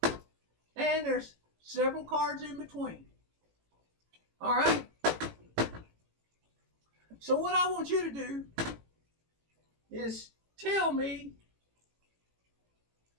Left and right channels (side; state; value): left; late; 18 ms